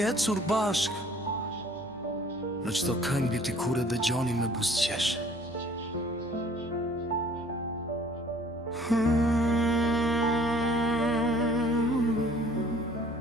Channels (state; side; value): noise; left; hum, 27 dB below the sound